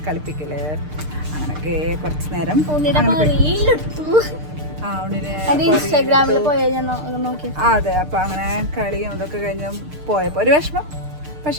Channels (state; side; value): late; left; 6.6 ms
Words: കളിപ്പിക്കൽ, അങ്ങനെയൊക്കെ കുറച്ച് നേരം. ഇൻസ്റ്റാഗ്രാമിൽ നോക്കി. അതെ, അപ്പോൾ അങ്ങനെ കളിയും ഇതൊക്കെ കഴിഞ്ഞ് പോയപ്പോൾ ഒരു വിഷമം.